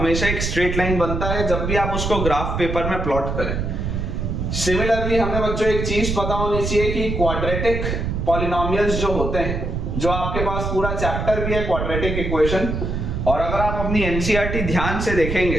एक स्ट्रेट लाइन बनता है जब भी आप उसको ग्राफ पेपर में प्लॉट करें। सिमिलरली हमें बच्चों एक चीज पता होनी चाहिए कि क्वाड्रेटिक पॉलिनोमियल्स जो होते हैं, जो आपके पास पूरा चैप्टर भी है क्वाड्रेटिक इक्वेशन, और अगर आप अपनी एनसीईआरटी ध्यान से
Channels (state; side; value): noise; right; rumble, 2 dB below the sound